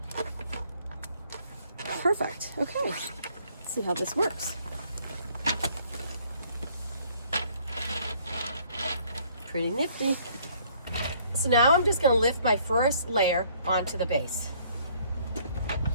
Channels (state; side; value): inverted; both; correlation -0.61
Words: Perfect. Okay. Let's see how this works. Pretty nifty. So now I'm just going to lift my first layer onto the base.